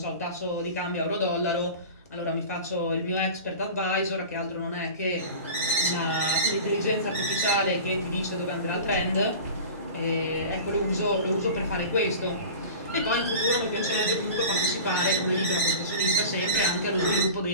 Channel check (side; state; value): both; inverted; correlation -0.36